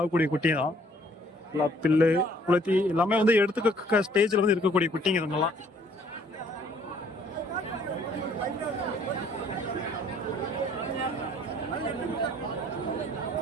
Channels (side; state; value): both; normal; correlation 0.60